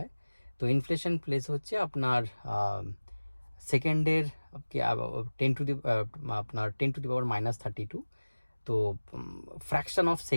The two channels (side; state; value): both; inverted; correlation -1.00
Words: তো ইনফ্লেশন ফেজ হচ্ছে আপনার সেকেন্ডের টেন টু দি পাওয়ার -32। তো ফ্র্যাকশন অফ